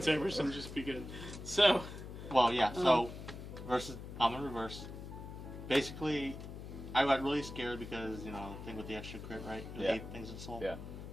Sabers and just be good. So. Well, yeah. So I'm in reverse. Basically, I got really scared because thing with the extra crit, right? The 8 things in soul. Yeah.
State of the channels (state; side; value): noise; left; hum, 10 dB below the sound